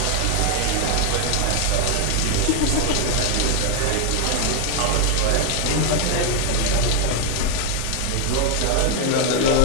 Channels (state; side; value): different; both; correlation 0.00